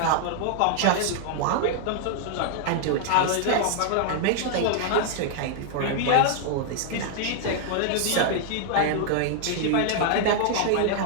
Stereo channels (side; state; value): both; different; correlation 0.00